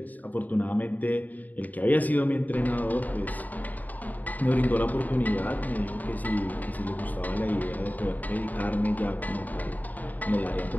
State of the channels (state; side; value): late; right; 0.081 ms